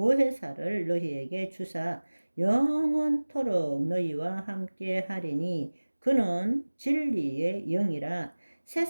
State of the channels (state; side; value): inverted; both; correlation -1.00